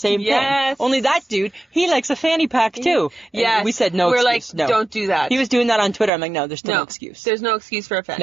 Yes. thing. Only that dude, he likes a fanny pack too. And Yes. we said no We're excuse. like, no. don't do that. He was doing that on Twitter. I'm like, no, there's still no excuse. There's no excuse for a fanny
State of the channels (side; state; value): left; drops out; at 6.1 s